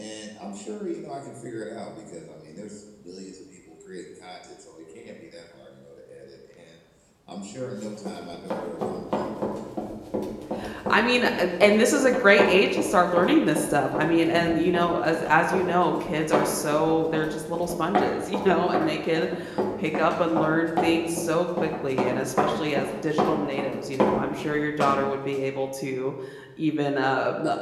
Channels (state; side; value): identical; both; correlation 1.00